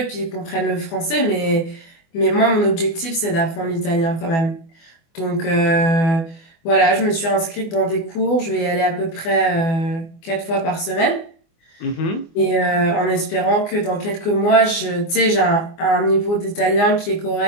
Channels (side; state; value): right; late; 24 ms